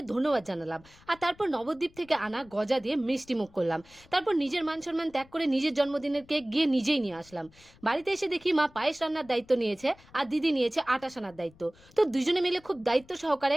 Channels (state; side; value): noise; left; rumble, 26 dB below the sound